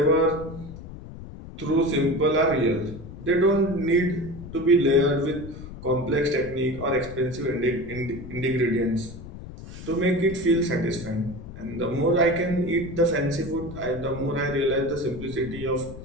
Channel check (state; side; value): noise; left; rumble, 13 dB below the sound